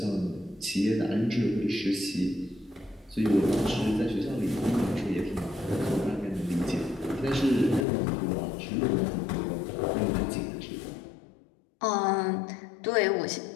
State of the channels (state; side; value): drops out; right; at 7.9 s